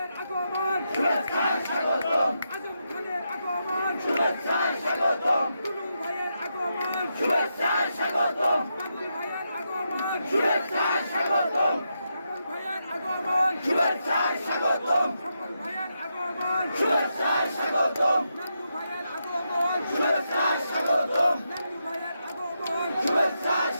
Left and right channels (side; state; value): both; inverted; correlation -0.84